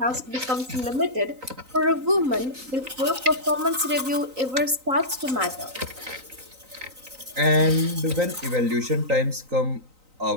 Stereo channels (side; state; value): left; late; 3.9 ms